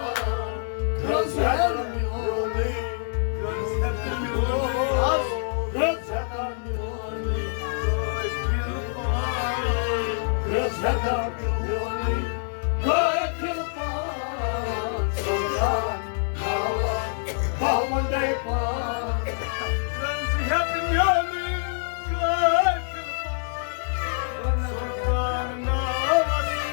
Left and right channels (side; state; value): right; silent; digital silence